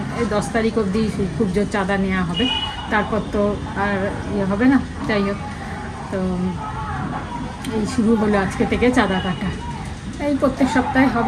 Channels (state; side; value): identical; both; correlation 1.00